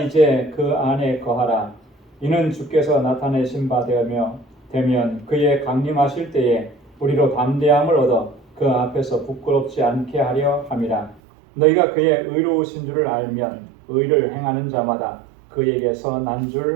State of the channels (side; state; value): left; drops out; at 11.2 s